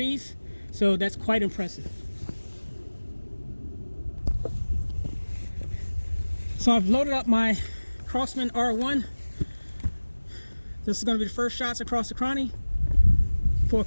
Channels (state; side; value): inverted; both; correlation -1.00